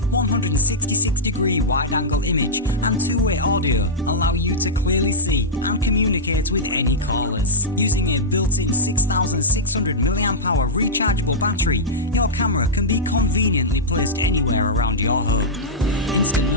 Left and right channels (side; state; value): both; normal; correlation -0.11